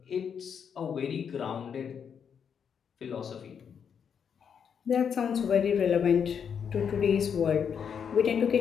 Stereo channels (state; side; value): quieter; right; 7.3 dB